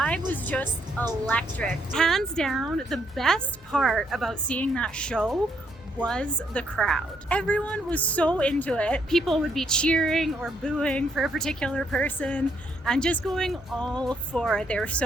was just electric. Hands down, the best part about seeing that show was the crowd. Everyone was so into it. People would be cheering or booing for a particular person and just going all for it. They were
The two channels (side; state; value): both; normal; correlation 0.73